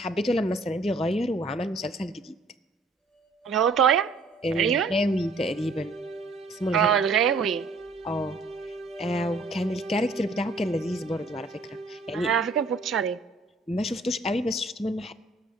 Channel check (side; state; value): left; quieter; 3.2 dB